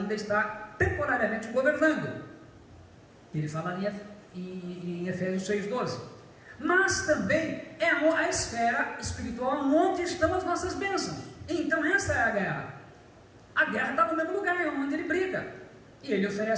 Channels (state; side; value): identical; both; correlation 1.00